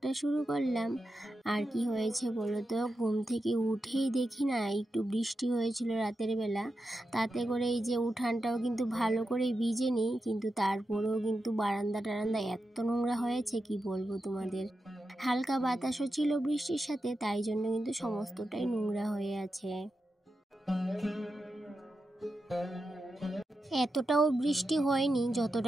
শুরু করলাম। আর কি হয়েছে বলো তো, ঘুম থেকে উঠেই দেখি না একটু বৃষ্টি হয়েছিল রাতের বেলা, তাতে করে এই যে উঠানটাও কিন্তু ভালো করে ভিজেনি, কিন্তু তারপরেও কিন্তু বারান্দা টারান্দা এত নোংরা হয়েছে কি বলবো তোমাদের। হালকা বাতাসও ছিল বৃষ্টির সাথে, তাই জন্য কিন্তু সমস্তটাই নোংরা হয়ে আছে। এতটাও বৃষ্টি হয়নি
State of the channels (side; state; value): both; normal; correlation 0.89